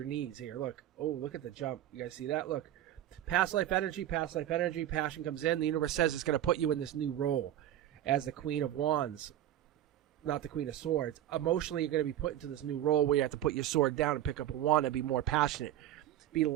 needs here. Look. Oh, look at the jump. You guys see that? Look. Past life energy, passion comes in. The universe says it's going to put you in this new role as the Queen of Wands, not the Queen of Swords. Emotionally, you're going to be put into this new role where you have to put your sword down and pick up a wand and be more passionate. Be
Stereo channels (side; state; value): left; quieter; 12.3 dB